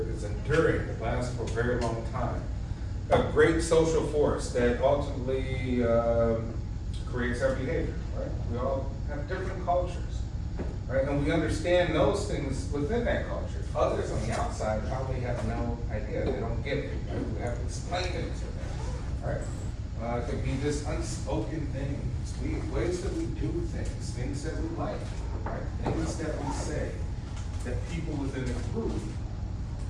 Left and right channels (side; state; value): both; identical; correlation 1.00